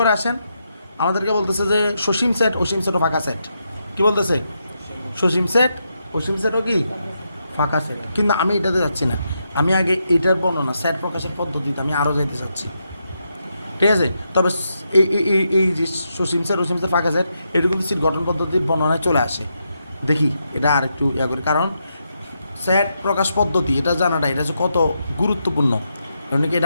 আসেন, আমাদেরকে বলতেছে যে সসীম সেট, অসীম সেট ও ফাঁকা সেট। কি বলতেছে? সসীম সেট, অসীম সেট ও কি? ফাঁকা সেট। কিন্তু আমি এটাতে যাচ্ছি না, আমি আগে এটার বর্ণনা, সেট প্রকাশের পদ্ধতিতে আমি আরও যাইতে চাচ্ছি। ঠিক আছে? তবে এই যে সসীম সেট, অসীম সেট, ফাঁকা সেট, এটা কিন্তু সিট গঠন পদ্ধতির বর্ণনায় চলে আসে। দেখি এটা আর একটু করি, কারণ সেট প্রকাশ পদ্ধতি এটা জানাটা এটা যে কত গুরুত্বপূর্ণ, কারণ কি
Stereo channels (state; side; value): inverted; both; correlation -0.83